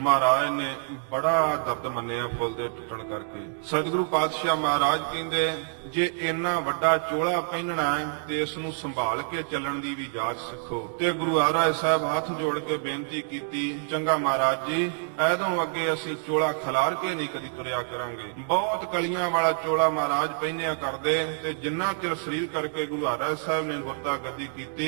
ने बड़ा दर्द मन्निया फुल दे टुटण करके। सतगुरु पातशाह महाराज कहंदे जे इन्ना वड्डा चोला पहनना है ते इस नूं संभाल के चलण दी भी जाच सिखो। ते गुरु हरराय साहब हाथ जोड़ के बेनती कीती, चंगा महाराज जी ऐदों अगे असीं चोला खलार के नहीं कदी तुरिया करांगे। बहुत कलियां वाला चोला महाराज पहनिया करदे ते जिन्ना चिर सरीर करके गुरु हरराय साहब ने गुरता गद्दी कीती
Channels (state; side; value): silent; left; digital silence